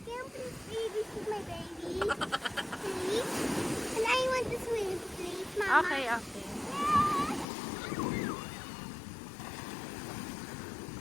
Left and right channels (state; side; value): drops out; right; at 7.5 s